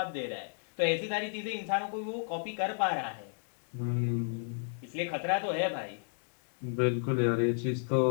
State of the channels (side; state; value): right; silent; digital silence